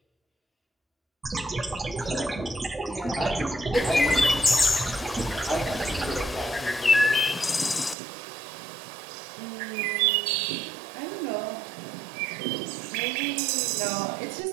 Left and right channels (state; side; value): drops out; left; at 8.0 s